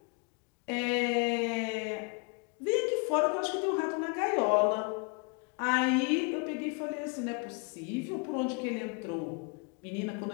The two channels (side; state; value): right; quieter; 33.0 dB